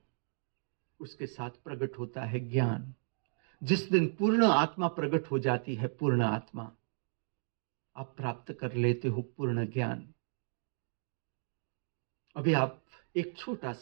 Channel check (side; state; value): left; silent; digital silence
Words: उसके साथ प्रकट होता है ज्ञान। जिस दिन पूर्ण आत्मा प्रकट हो जाती है, पूर्ण आत्मा, आप प्राप्त कर लेते हो पूर्ण ज्ञान। अभी आप एक छोटा